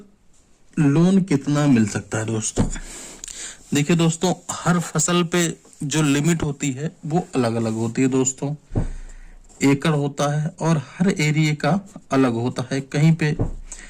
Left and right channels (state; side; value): identical; both; correlation 1.00